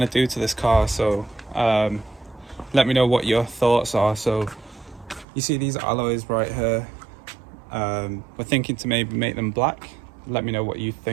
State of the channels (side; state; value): left; drops out; at 5.2 s